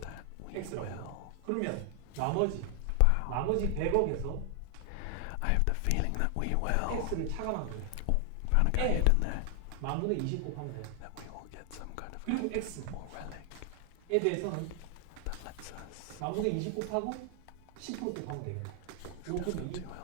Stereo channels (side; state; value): both; different; correlation 0.00